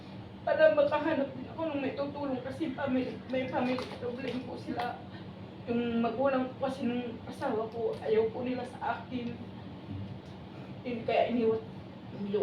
Para makahanap din ako ng may tutulong kasi may family problem po sila. Yung magulang ko kasi nung asawa ko, ayaw po nila sa akin. Kaya iniwan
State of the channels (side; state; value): both; identical; correlation 1.00